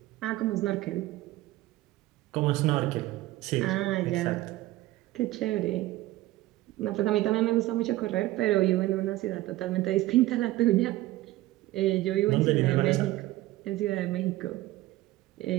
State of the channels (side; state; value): left; quieter; 16.9 dB